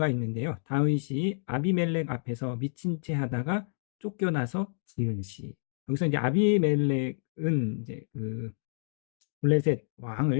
있는데요. 다윗이 아비멜렉 앞에서 미친 채 하다가 쫓겨나서 지은 시. 여기서 이제 아비멜렉은 이제 그 블레셋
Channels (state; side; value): silent; right; digital silence